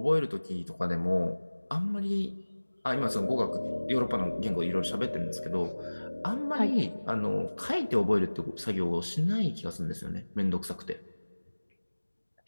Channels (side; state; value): both; inverted; correlation -1.00